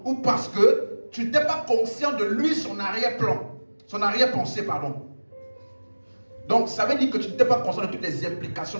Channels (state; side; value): inverted; both; correlation -1.00